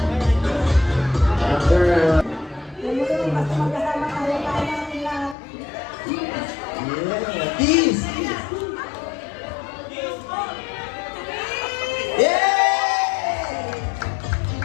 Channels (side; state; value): right; drops out; at 5.4 s